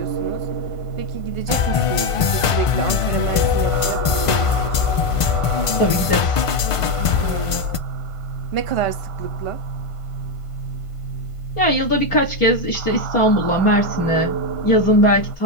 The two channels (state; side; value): late; right; 1.5 ms